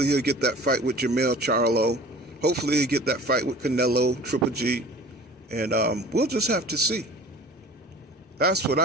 he'll get that fight with Jermell Charlo. Hopefully he'll get that fight with Canelo, Triple G. And we'll just have to see. That's what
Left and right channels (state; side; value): normal; both; correlation 0.43